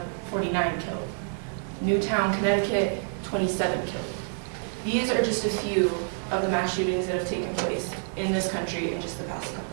49 killed. Newtown, Connecticut, 27 killed. These are just a few of the mass shootings that have taken place in this country in just the past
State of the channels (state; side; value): silent; left; 58 dB below the other